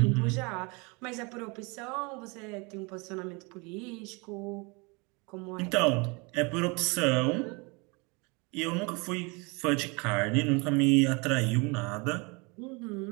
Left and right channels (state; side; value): quieter; left; 29.2 dB